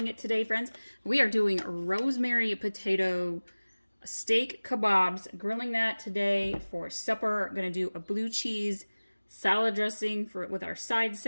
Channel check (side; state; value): both; inverted; correlation -1.00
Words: it today, friends. We are doing rosemary potato steak kebabs, grilling that today for supper. I'm gonna do a blue cheese salad dressing with our side